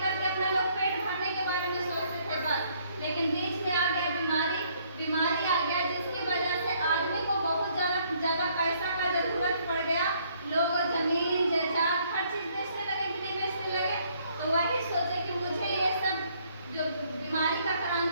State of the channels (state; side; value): inverted; both; correlation -0.66